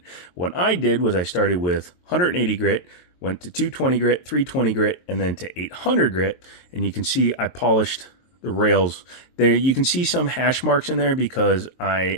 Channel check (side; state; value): right; late; 22 ms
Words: What I did was I started with 180 grit, went to 220 grit, 320 grit, and then to 800 grit. And you can see I polished the rails. There you can see some hash marks in there because I